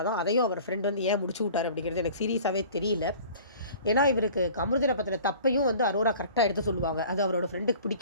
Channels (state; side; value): inverted; both; correlation -0.46